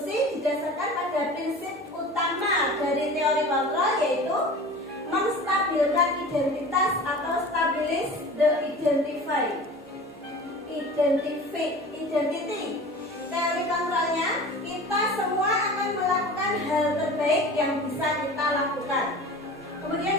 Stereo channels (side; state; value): both; normal; correlation 0.38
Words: didasarkan pada prinsip utama dari teori kontrol, yaitu menstabilkan identitas atau stabilis the identity. Teori kontrolnya, kita semua akan melakukan hal terbaik yang bisa kita lakukan. Kemudian